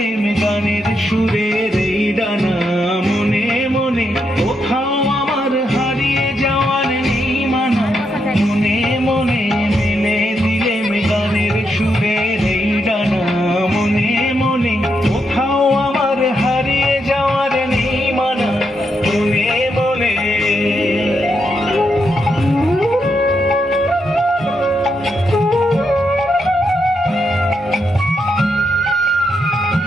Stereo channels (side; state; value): both; normal; correlation 0.81